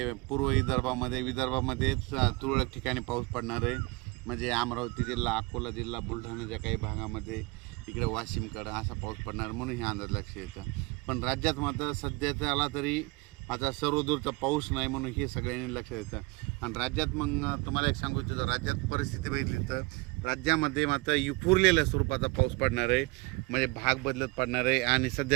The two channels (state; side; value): quieter; left; 25.5 dB